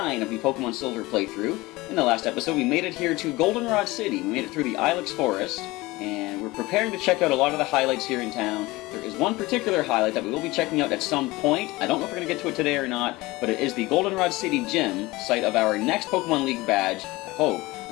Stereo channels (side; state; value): right; quieter; 20.8 dB